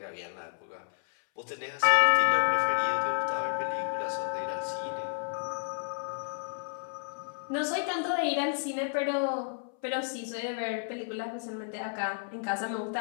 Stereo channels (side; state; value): right; silent; 57 dB below the other